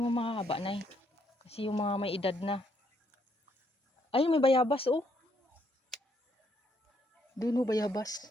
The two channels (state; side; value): normal; both; correlation 0.72